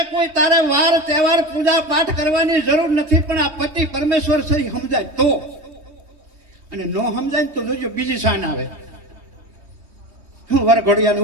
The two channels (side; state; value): left; late; 3.2 ms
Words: કોઈ તારે વાર તહેવાર પૂજા પાઠ કરવાની જરૂર નથી. પણ આ પતિ પરમેશ્વર છે સમજાય તો, અને ન સમજાય તો જોજો બીજી શાન આવે. હું વરઘોડિયાને